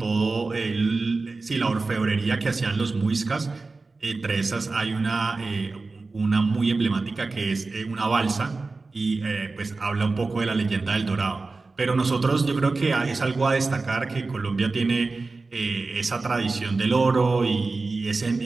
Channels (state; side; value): quieter; left; 3.8 dB